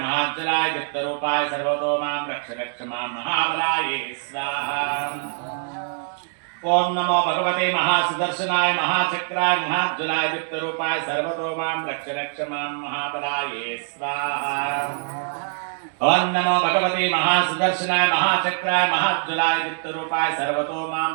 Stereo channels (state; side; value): silent; left; digital silence